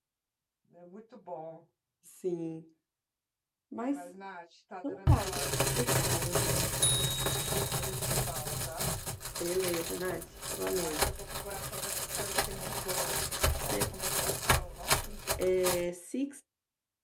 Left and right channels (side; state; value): both; identical; correlation 1.00